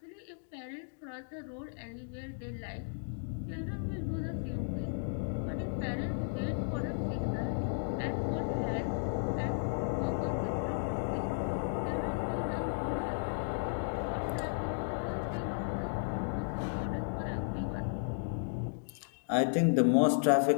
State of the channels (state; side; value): silent; right; digital silence